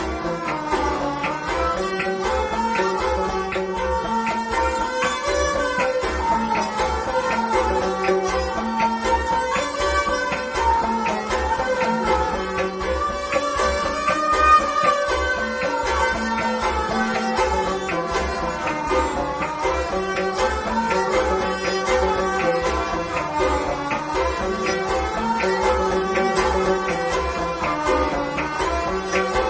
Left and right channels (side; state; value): both; identical; correlation 1.00